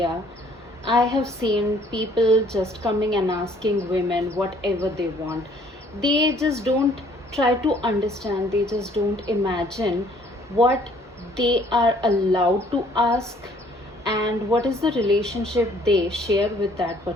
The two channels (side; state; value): both; normal; correlation 0.60